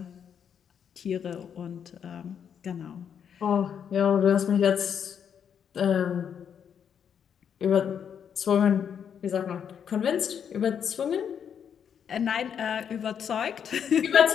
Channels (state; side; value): quieter; right; 8.0 dB